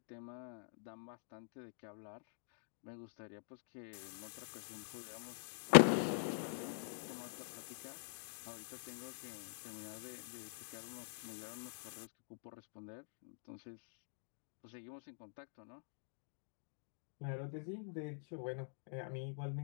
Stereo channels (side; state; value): right; silent; digital silence